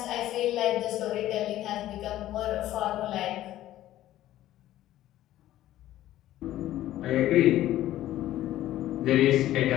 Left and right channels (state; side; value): quieter; right; 13.9 dB